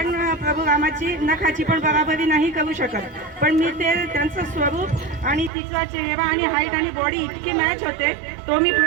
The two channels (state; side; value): drops out; left; at 5.5 s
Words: प्रभू रामाची नखाची पण बराबरी नाही करू शकत, पण मी ते त्यांचं स्वरूप आणि तिचा चेहरा आणि हाईट आणि बॉडी इतकी मॅच होते तो मी